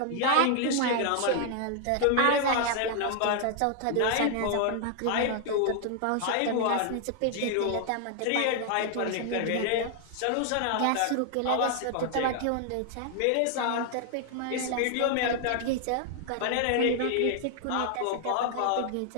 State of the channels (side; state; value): both; different; correlation 0.00